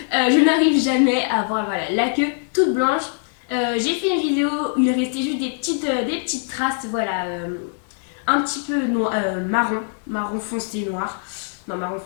n'arrive jamais à avoir voilà, la queue toute blanche. J'ai fait une vidéo où il restait juste des petites traces, voilà, un petit peu marron foncé noir. Non, marron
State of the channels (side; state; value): right; silent; 64 dB below the other